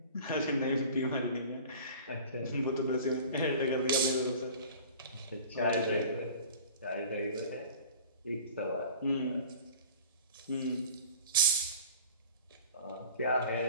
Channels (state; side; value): inverted; both; correlation -0.42